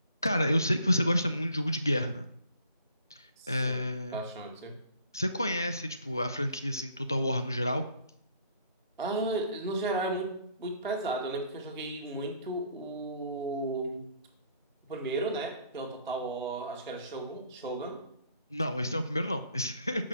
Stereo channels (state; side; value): inverted; both; correlation -0.61